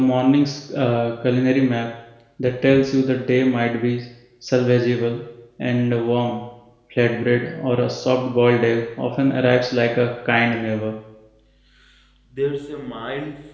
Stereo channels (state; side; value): identical; both; correlation 1.00